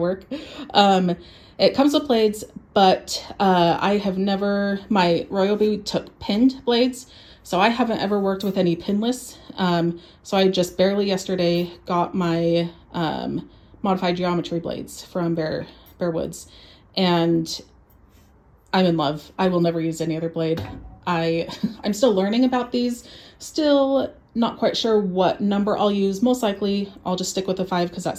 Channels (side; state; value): both; identical; correlation 1.00